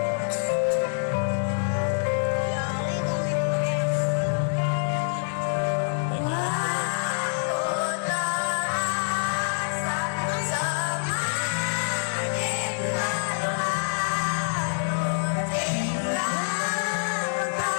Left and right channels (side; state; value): right; silent; 61 dB below the other